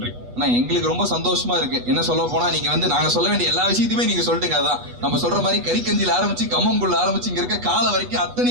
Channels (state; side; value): late; left; 8.2 ms